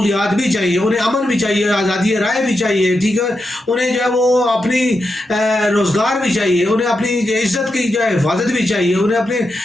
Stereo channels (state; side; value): normal; both; correlation 0.87